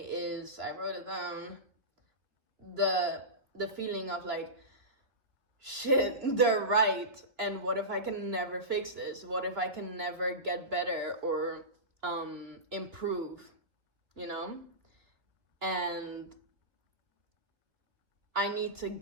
I wrote it down, the feeling of like, shit, they're right, and what if I can never fix this? What if I can never get better or improve, And I need to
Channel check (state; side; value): late; left; 3.1 ms